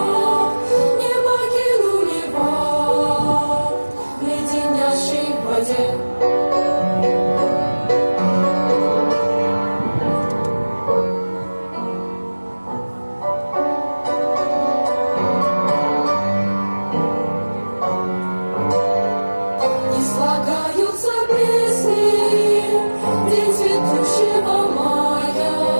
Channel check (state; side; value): inverted; both; correlation -1.00